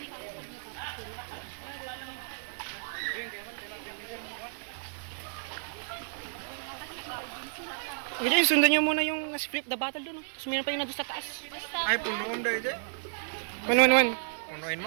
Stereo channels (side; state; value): left; silent; digital silence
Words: Okay, sundan nyo muna yung split the battle doon. Tapos meron pa yung nandun sa taas. Ay, punoon daw ito. 1-1-1. Punuin